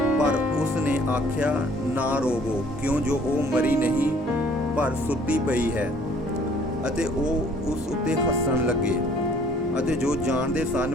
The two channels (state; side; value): normal; both; correlation 0.57